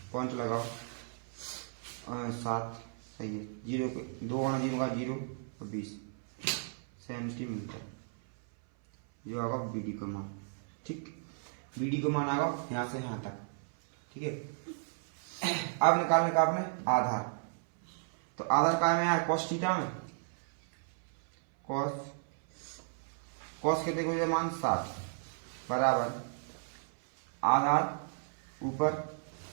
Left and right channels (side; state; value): left; silent; 55 dB below the other